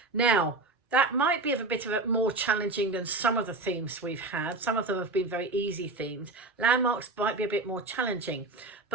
Now, that might be a bit of a more challenging than some of the themes we've had. Some of them have been very easy themes. Landmarks might be a bit more challenging.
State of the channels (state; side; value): quieter; left; 3.3 dB